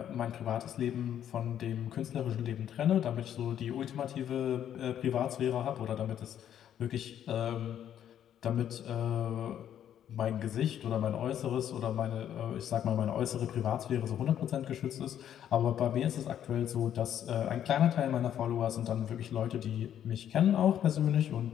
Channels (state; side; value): quieter; right; 10.1 dB